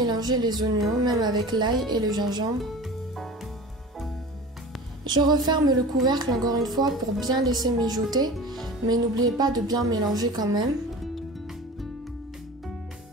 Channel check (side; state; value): both; normal; correlation 0.36